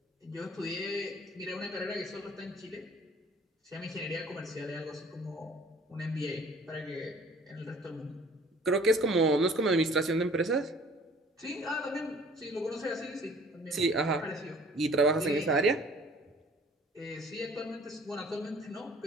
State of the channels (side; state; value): both; normal; correlation 0.53